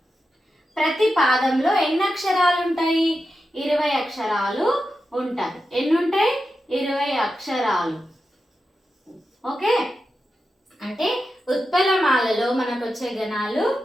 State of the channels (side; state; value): both; normal; correlation 0.90